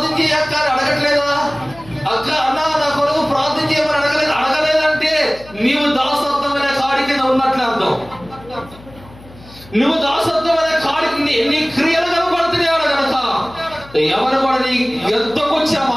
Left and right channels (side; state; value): left; noise; hum, 21 dB below the sound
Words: చేయ అక్క అని అడగట్లేదా? అక్క అన్న నా కొరకు ప్రార్థన చేయమని అడగలేదంటే నీవు దాసత్వం అనే కాడి కింద ఉన్నట్లే అర్థం. నువ్వు దాసత్వం అనే కాడికి నీ క్రియలు కనపడుతున్నాడు కనుక ఎవరు కూడా నీ ఎద్దకొచ్చే